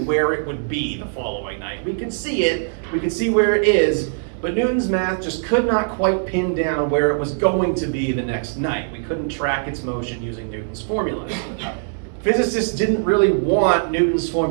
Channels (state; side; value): silent; left; digital silence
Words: it would be the following night. We could see it, we could see where it is, but Newton's math just could not quite pin down where it was going to be the next night. We couldn't track its motion using Newton's formulas. Physicists didn't really want Newton's